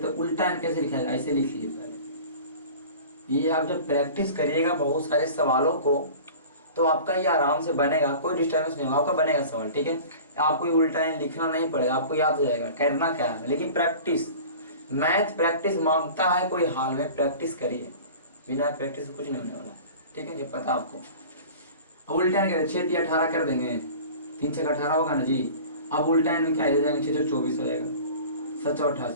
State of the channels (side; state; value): both; inverted; correlation -0.40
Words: हैं। उल्टा एन कैसे लिखा है, ऐसे लिख लीजिए पहले। ये आप जब प्रैक्टिस करिएगा बहुत सारे सवालों को, तो आपका ये आराम से बनेगा, कोई डिस्टर्बेंस नहीं होगा, आपका बनेगा सवाल। ठीक है, आपको ये उल्टा एन लिखना नहीं पड़ेगा, आपको याद हो जाएगा करना क्या है। लेकिन प्रैक्टिस, मैथ प्रैक्टिस मांगता है, कोई हाल में प्रैक्टिस करिए, बिना प्रैक्टिस कुछ नहीं होने वाला। ठीक है, ये पता आपको। अब उल्टा एन 6 3 18 कर देंगे, 3 6 18 होगा ना जी। अब उल्टा एन में क्या हो जाएगा, 6 24 हो जाएगा, 7